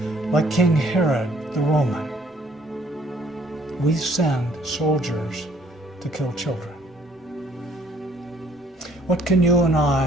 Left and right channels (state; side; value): normal; both; correlation 0.62